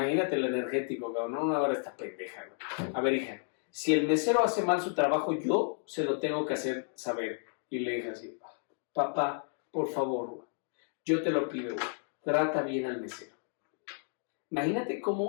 el energético, cabrón. No, ahora está pendeja, güey. A ver, hija, si el mesero hace mal su trabajo, yo se lo tengo que hacer saber. Y le dije así, papá, por favor, güey, yo te lo pido, güey, trata bien al mesero. Imagínate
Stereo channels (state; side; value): silent; right; 56 dB below the other